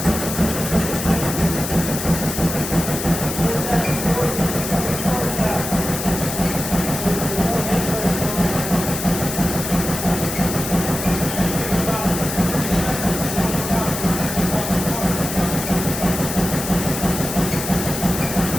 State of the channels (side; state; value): left; noise; hiss, 6 dB below the sound